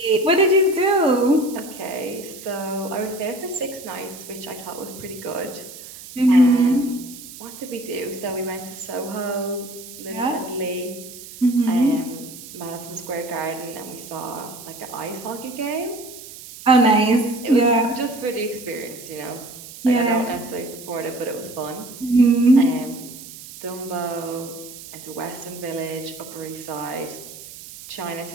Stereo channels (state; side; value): noise; right; hiss, 15 dB below the sound